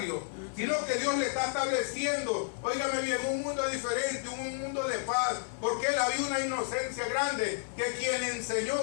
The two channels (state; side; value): silent; right; digital silence